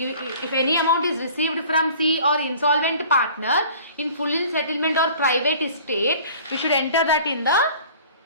any amount is received from C or insolvent partner in full in settlement or private estate, we should enter that in the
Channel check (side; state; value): both; inverted; correlation -0.47